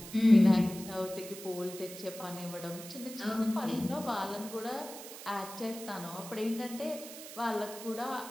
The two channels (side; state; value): right; noise; hiss, 13 dB below the sound